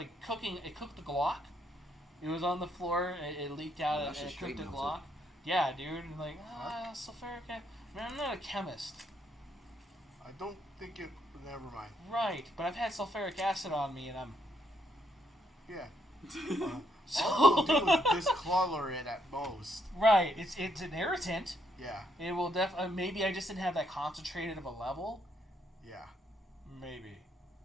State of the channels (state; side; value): normal; both; correlation 0.74